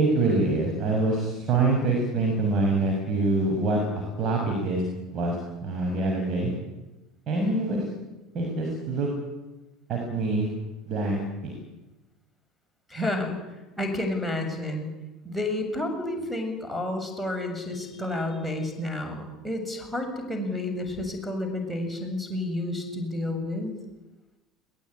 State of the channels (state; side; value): normal; both; correlation 0.41